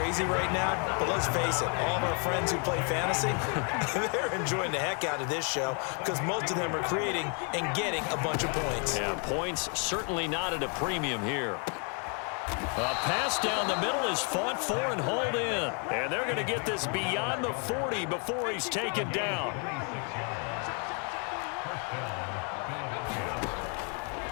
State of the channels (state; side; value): quieter; right; 38.6 dB